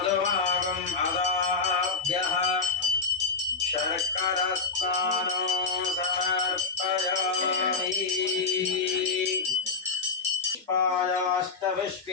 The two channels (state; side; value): quieter; right; 4.5 dB